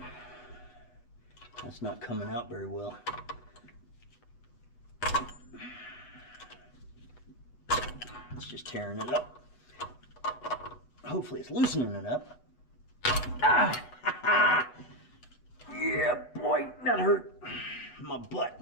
That's not coming out very well. It's just tearing it up. Hopefully it's loosening it up. Ah! Yeah, boy, that hurt my butt.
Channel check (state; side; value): late; right; 8.2 ms